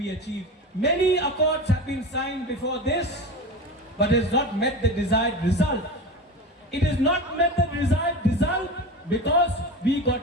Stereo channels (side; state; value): both; normal; correlation 0.28